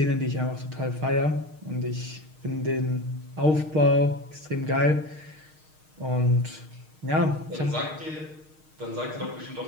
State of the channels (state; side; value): late; left; 6.5 ms